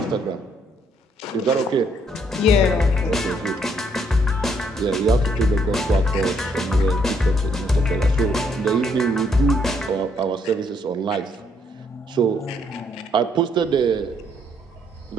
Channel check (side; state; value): both; normal; correlation 0.70